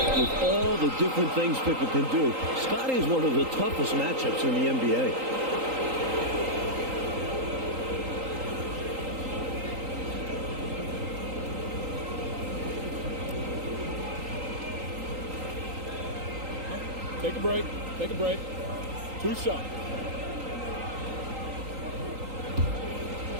all the different things Pippen can do, Scotty is one of the toughest matchups in the NBA. Take a break. Take a break. 2 shots.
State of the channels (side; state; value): left; late; 3.8 ms